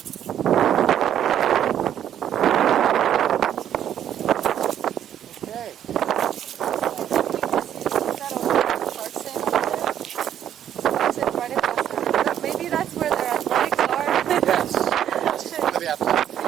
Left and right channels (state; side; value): quieter; left; 10.3 dB